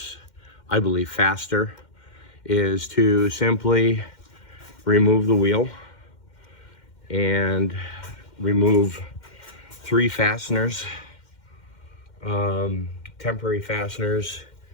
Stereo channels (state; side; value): late; right; 2.1 ms